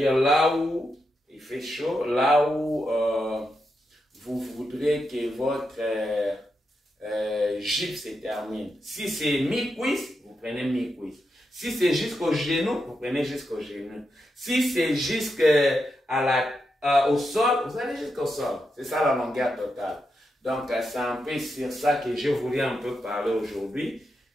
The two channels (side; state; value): both; normal; correlation 0.85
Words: là où il fait chaud, là où vous voudrez que votre jupe se termine. Si c'est mi-cuisse, vous prenez mi-cuisse. Si c'est jusqu'au genou, vous prenez jusqu'au genou. Si c'est jusqu'au sol, vous allez jusqu'au sol. C'est ça la longueur totale. Donc, c'est un peu sur ça que je voulais un peu parler aujourd'hui.